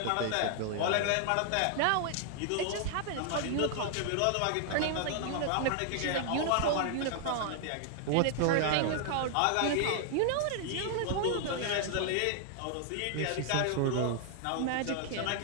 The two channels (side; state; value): both; different; correlation 0.00